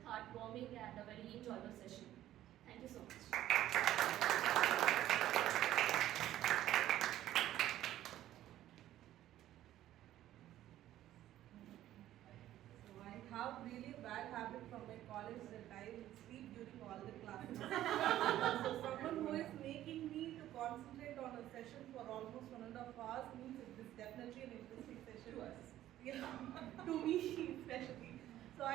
heartwarming and a very enjoyable session. Thank you so much. I have really bad habit from my college that I will sleep during all the classes. So someone who is making me to concentrate on a session for almost 1.5 hours means it is definitely an interesting session. To us. Yeah, to me especially. So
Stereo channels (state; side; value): quieter; left; 13.2 dB